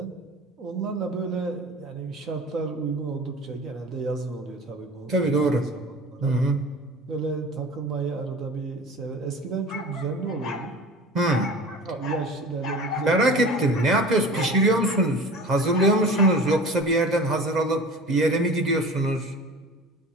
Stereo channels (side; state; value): both; normal; correlation 0.38